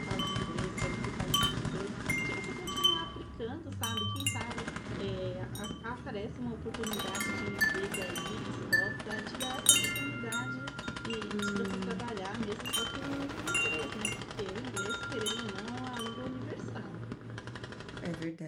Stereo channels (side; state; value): both; identical; correlation 1.00